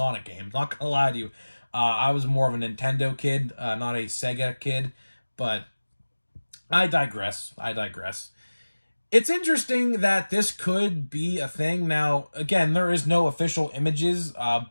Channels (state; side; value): inverted; both; correlation -1.00